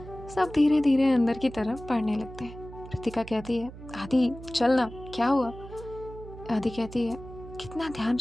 धीरे धीरे अंदर की तरफ बढ़ने लगते हैं। रितिका कहती है आदि चल ना, क्या हुआ? आदि कहती है कितना ध्यान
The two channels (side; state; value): right; noise; hum, 15 dB below the sound